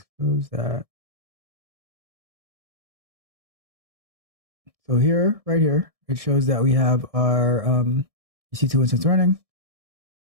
Close that. So here, right here, it shows that we have our EC2 instance running.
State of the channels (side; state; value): left; late; 1.6 ms